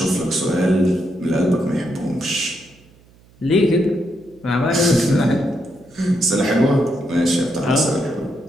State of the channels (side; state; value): right; noise; hum, 28 dB below the sound